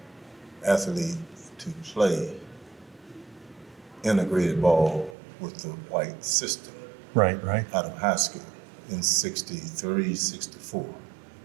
athlete to play integrated ball with the white system. Right. Out of high school in 63, 64.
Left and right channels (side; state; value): left; drops out; at 5.2 s